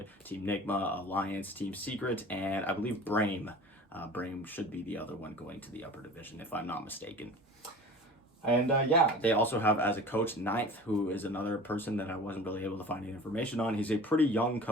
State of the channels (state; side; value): normal; both; correlation 0.39